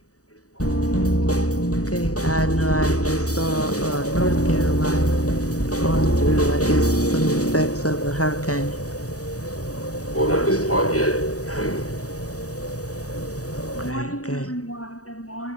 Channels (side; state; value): right; late; 0.66 ms